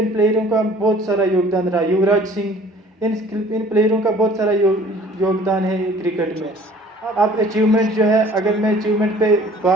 प्लेयरों का बहुत सारा योगदान रहा। युवराज सिंह, इन प्लेयरों का बहुत सारा योगदान है क्रिकेट में। अब अचीवमेंट जो है, अगर मैं अचीवमेंट पे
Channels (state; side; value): normal; both; correlation 0.52